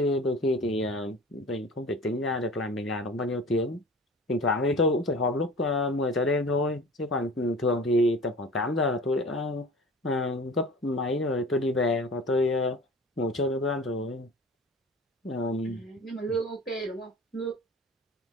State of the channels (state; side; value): normal; both; correlation 0.40